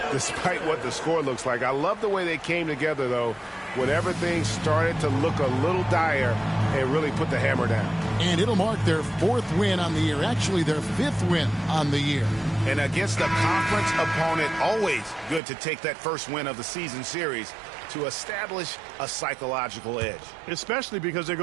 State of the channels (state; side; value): drops out; left; at 15.4 s